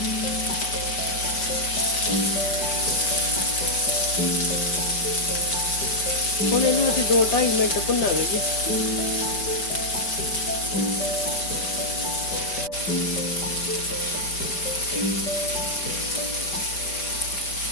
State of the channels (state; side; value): late; right; 5.1 ms